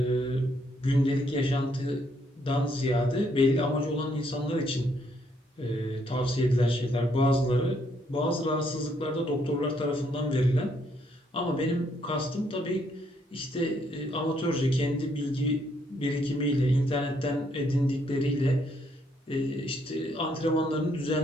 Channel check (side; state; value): both; normal; correlation 0.71